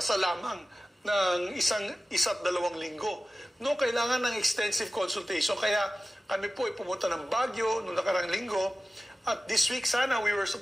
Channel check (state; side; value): normal; both; correlation 0.95